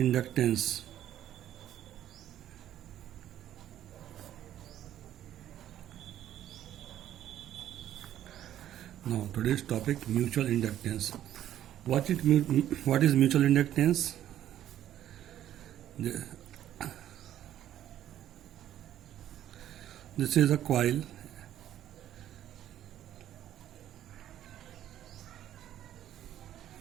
inductance. Now, today's topic mutual inductance. What is mutual inductance? This is a coil.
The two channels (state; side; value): quieter; left; 11.8 dB